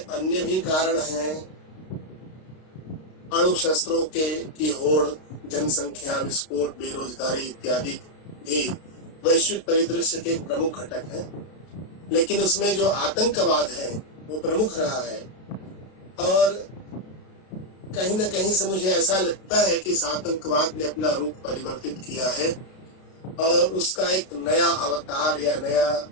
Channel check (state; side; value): late; right; 32 ms